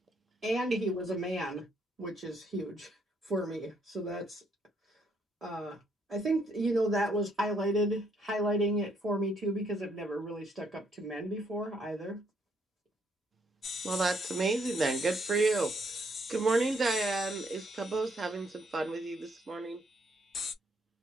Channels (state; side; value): normal; both; correlation 0.71